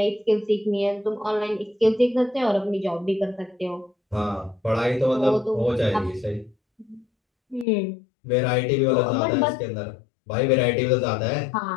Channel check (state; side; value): drops out; right; at 7.7 s